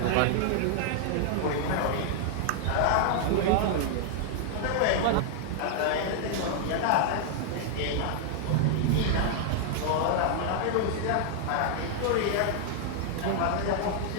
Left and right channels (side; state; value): both; different; correlation -0.01